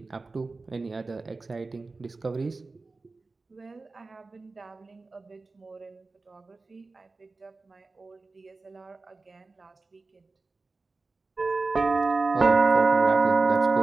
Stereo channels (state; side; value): quieter; left; 3.7 dB